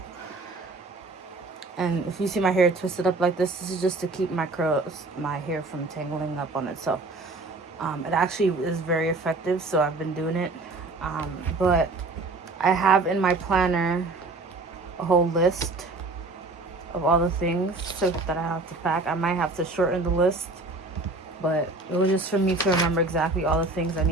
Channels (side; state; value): left; quieter; 3.3 dB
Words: And if you see my hair twisted up like this is just to keep my hair from tangling up on itself. It actually is very effective, so I've been doing it. But I have in my planner a whole list of all the things that I have to pack. I might have to shorten the list, but it was just for me to remember exactly all the things I